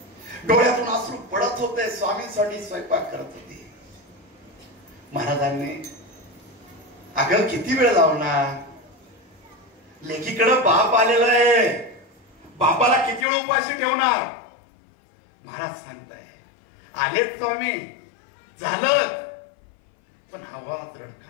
डोळ्यातून अश्रू पडत होते. स्वामींसाठी स्वयंपाक करत होते. महाराजांनी, अगं किती वेळ लावणार? लेकीकडे बाप आलेला आहे. बापाला किती वेळ उपाशी ठेवणार? महाराज सांगताय, आलेच स्वामी, झालं. पण आवाज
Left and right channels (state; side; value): drops out; right; at 13.2 s